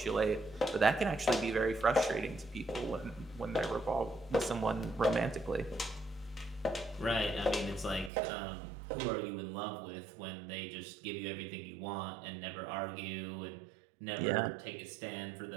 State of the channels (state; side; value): drops out; left; at 8.1 s